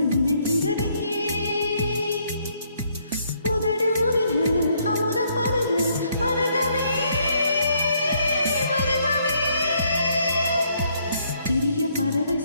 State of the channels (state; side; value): inverted; both; correlation -0.69